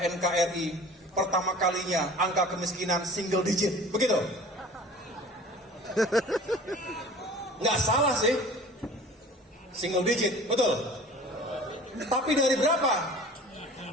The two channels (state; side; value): normal; both; correlation 0.44